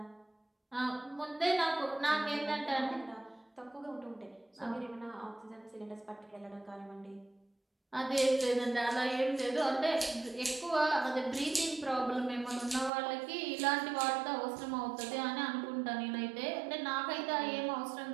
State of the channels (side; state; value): left; drops out; at 12.9 s